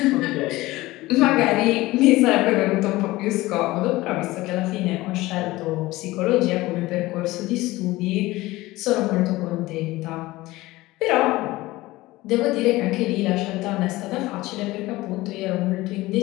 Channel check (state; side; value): quieter; right; 18.9 dB